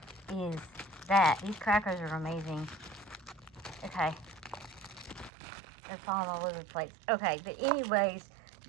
is that. These crackers are amazing. Okay. They're falling all over the place. Okay, but anyways,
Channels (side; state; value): left; drops out; at 5.3 s